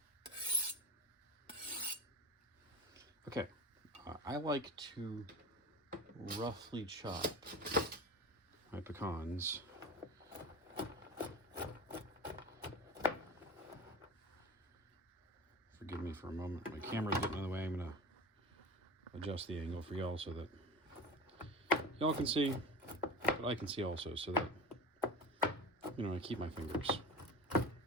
Okay, I like to roughly chop my pecans. Forgive me for a moment. My camera's getting in the way. I'm gonna adjust the angle for y'all so that y'all can see, but I can see also, so that, you know, I keep my fingers.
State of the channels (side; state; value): both; normal; correlation 0.30